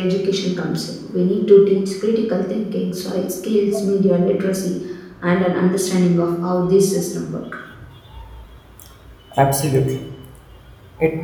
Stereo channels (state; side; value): identical; both; correlation 1.00